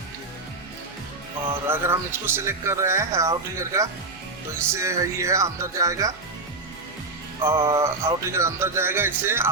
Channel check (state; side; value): quieter; left; 3.4 dB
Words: ठीक है। और अगर हम इसको सिलेक्ट कर रहे हैं आउट ट्रिगर का, तो इससे ये है अंदर जाएगा, और आउट ट्रिगर अंदर जाएगा, इससे